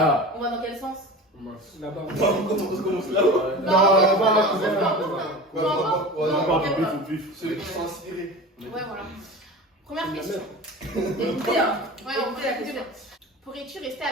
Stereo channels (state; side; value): normal; both; correlation 0.34